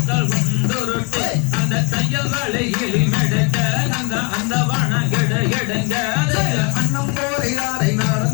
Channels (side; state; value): right; quieter; 32.3 dB